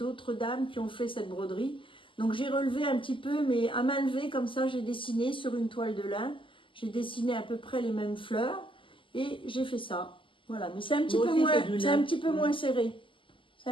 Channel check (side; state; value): right; late; 0.25 ms